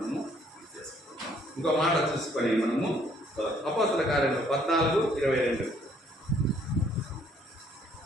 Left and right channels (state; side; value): normal; both; correlation 0.64